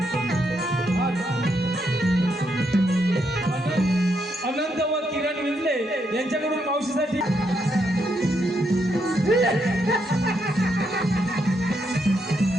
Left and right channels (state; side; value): normal; both; correlation 0.78